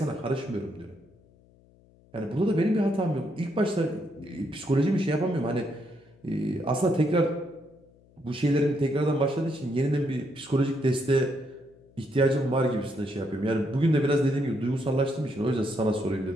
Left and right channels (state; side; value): noise; left; hum, 29 dB below the sound